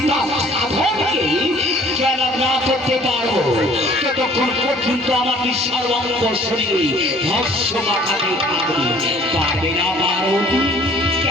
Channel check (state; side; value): normal; both; correlation 0.54